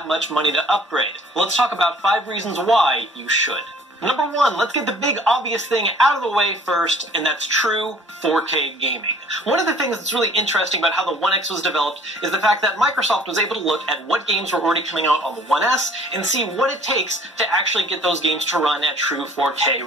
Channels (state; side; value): normal; both; correlation 0.53